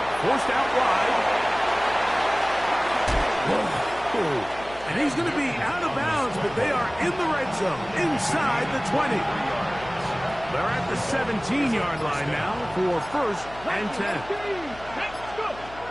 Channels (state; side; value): noise; left; hum, 18 dB below the sound